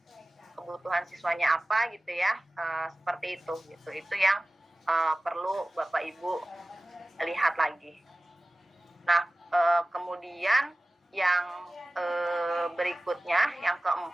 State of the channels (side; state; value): both; normal; correlation 0.97